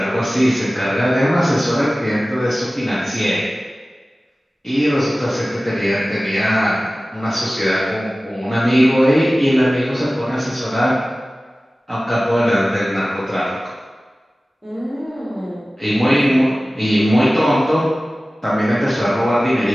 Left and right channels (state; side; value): normal; both; correlation 0.97